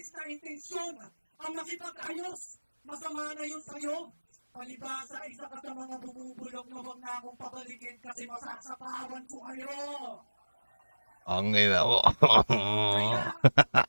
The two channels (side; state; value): both; inverted; correlation -1.00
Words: na intensyon ang makipag-ayos. Masama na yun sa'yo. Palibasa, isa ka sa mga bumubulong na wag na akong pabalikin kasi masasapawan ko kayo. Ang ina mo. Kaya,